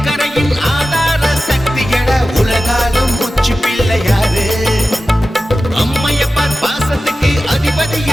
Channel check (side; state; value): both; normal; correlation 0.94